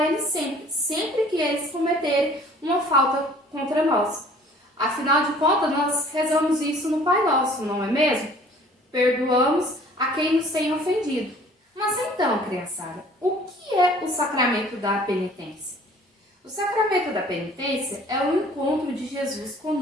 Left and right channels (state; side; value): normal; both; correlation 0.52